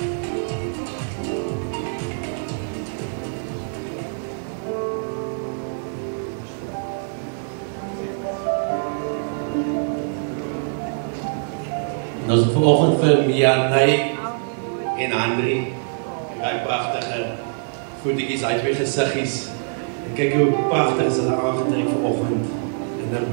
Ons het vanoggend vir Mianay en Andri, die pragtige voetjies uit twee gesiggies. En kyk hoe pragtig is hulle aangetrek vanoggend in 'n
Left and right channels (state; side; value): silent; left; digital silence